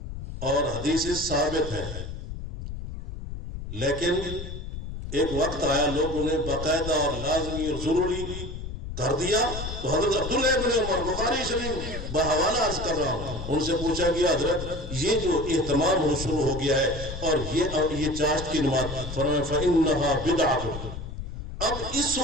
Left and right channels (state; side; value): noise; left; rumble, 8 dB below the sound